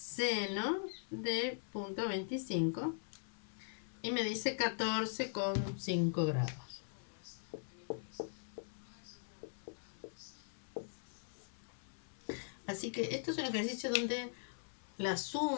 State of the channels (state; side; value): silent; right; 50 dB below the other